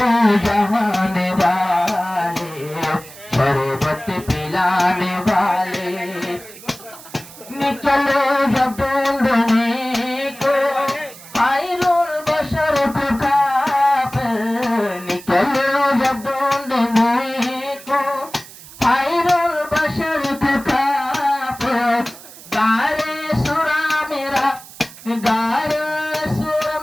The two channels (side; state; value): right; noise; hiss, 18 dB below the sound